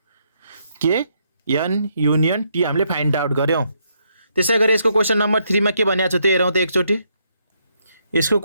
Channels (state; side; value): inverted; both; correlation -0.75